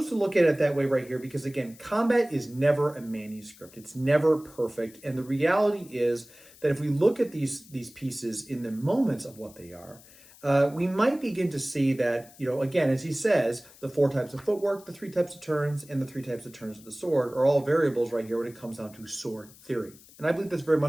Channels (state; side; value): noise; left; hiss, 23 dB below the sound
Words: to look at it that way right here because, again, combat is never a manuscript. It's never perfect. And the reality is that if we look at these pieces in the moments of what they are, we might begin to see that, again, as he says, the 4 types of footwork, the 3 types of turns, and the 3 types of turns of the sword are all variables right here when it comes down to sword theory. And I believe that's very